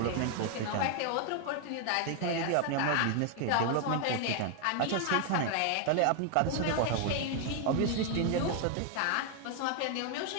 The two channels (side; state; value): both; different; correlation 0.00